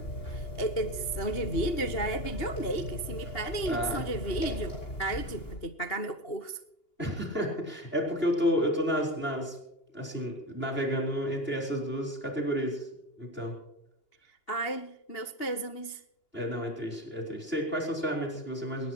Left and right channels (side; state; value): right; late; 2.8 ms